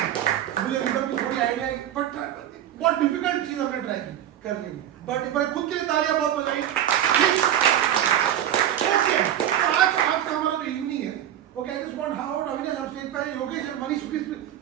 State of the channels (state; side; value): quieter; left; 11.1 dB